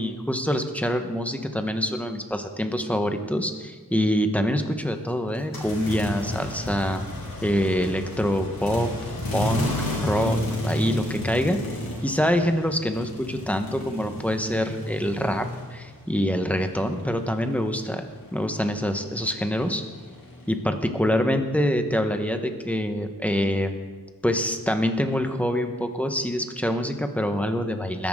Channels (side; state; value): both; normal; correlation 0.76